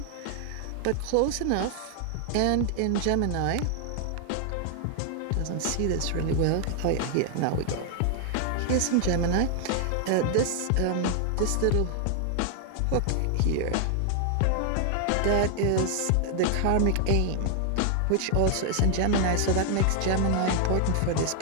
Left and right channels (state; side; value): different; both; correlation 0.00